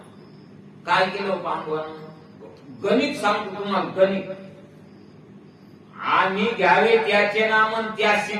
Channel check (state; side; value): identical; both; correlation 1.00